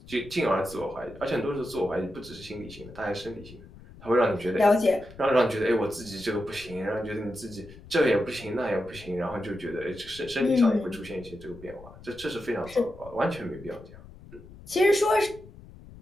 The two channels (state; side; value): noise; left; rumble, 19 dB below the sound